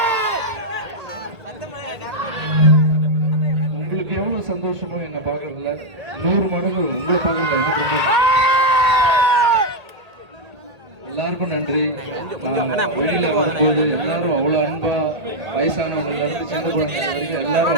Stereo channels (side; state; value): left; late; 1.8 ms